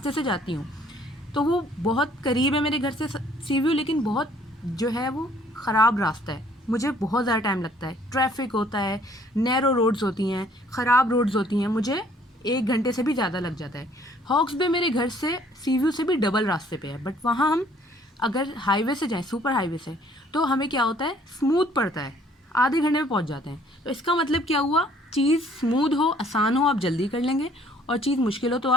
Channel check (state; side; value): normal; both; correlation 0.59